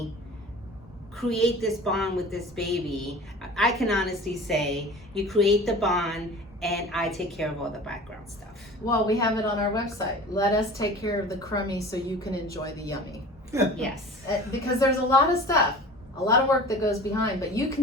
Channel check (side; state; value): both; normal; correlation 0.40